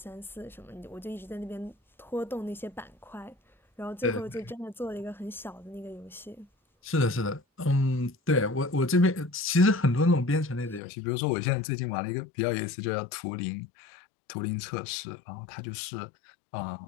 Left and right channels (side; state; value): right; drops out; at 10.8 s